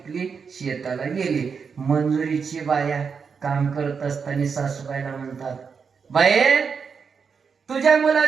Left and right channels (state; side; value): quieter; left; 5.9 dB